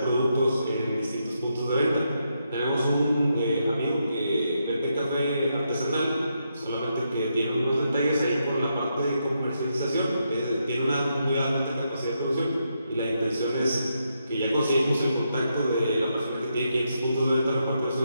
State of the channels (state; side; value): inverted; both; correlation -0.81